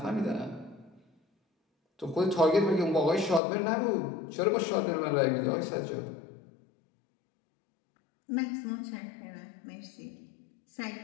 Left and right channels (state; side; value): drops out; right; at 3.4 s